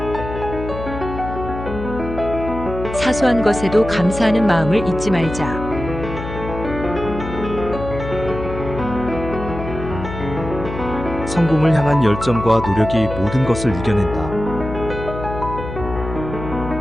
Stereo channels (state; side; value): noise; left; hum, 8 dB below the sound